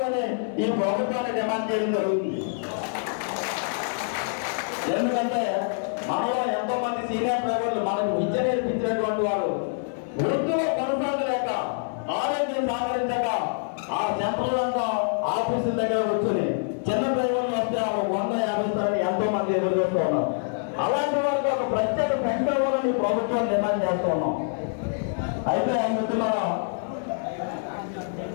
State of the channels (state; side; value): silent; right; 61 dB below the other